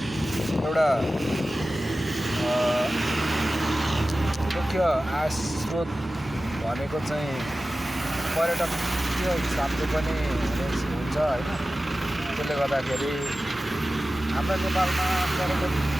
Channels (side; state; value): both; normal; correlation 0.95